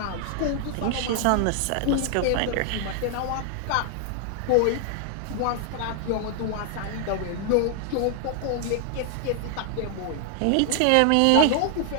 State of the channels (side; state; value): both; different; correlation 0.00